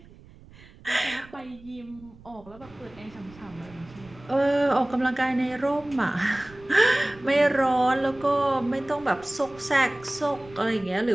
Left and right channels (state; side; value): noise; right; rumble, 22 dB below the sound